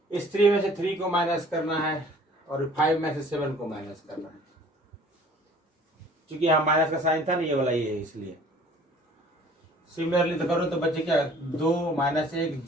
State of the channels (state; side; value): normal; both; correlation 0.52